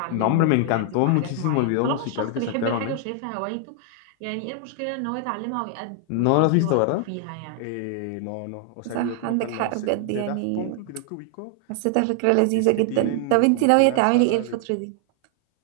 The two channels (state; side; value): different; both; correlation 0.00